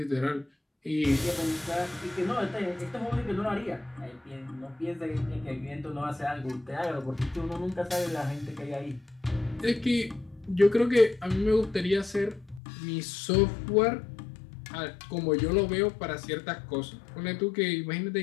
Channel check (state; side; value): drops out; right; at 12.6 s